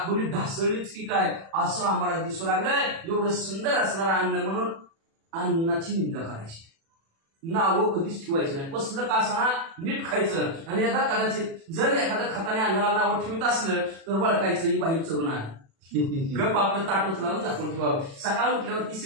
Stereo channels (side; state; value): left; late; 36 ms